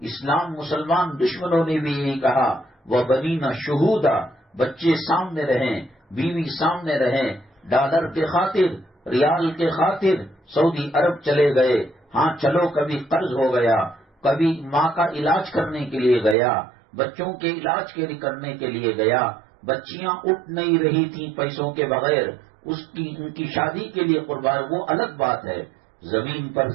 اسلام مسلمان دشمنوں نے بھی یہی کہا وَبَنِينَ شُهُودًا، بچے سامنے رہیں، بیوی سامنے رہیں، ڈالر کے خاطر، ریال کے خاطر، سعودی عرب چلے گئے، ہاں چلو کبھی قرض ہو گیا، کبھی ماں کا علاج کرنے کے لیے گیا، بچوں کے علاج کے کرنے کے لیے گیا، بچیاں اٹھ نہیں رہی تھیں پیسوں کے بغیر، ان کی شادی کے لیے قربان، وہ الگ بات ہے۔ زمین پر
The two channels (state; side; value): drops out; left; at 16.4 s